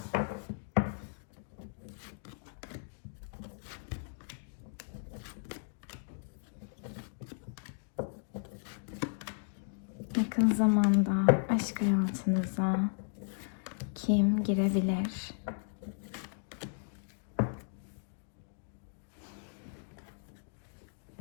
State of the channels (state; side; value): silent; right; digital silence